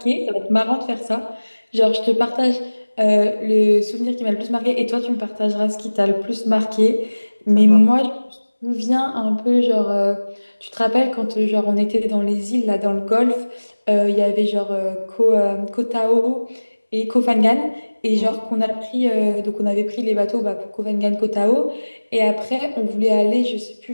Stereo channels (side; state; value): both; inverted; correlation -1.00